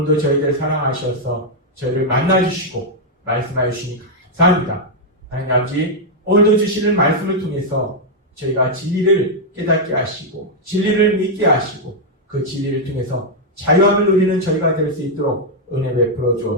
저희들 사랑하셔서 저희를 만나주시고 말씀하여 주시니 감사합니다. 하나님 아버지 오늘도 주시는 말씀을 통해서 저희가 진리를 깨닫게 하시고 진리를 믿게 하시고 그 진리를 통해서 자유함을 누리는 저희가 될 수 있도록 은혜 베풀어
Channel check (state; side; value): normal; both; correlation -0.02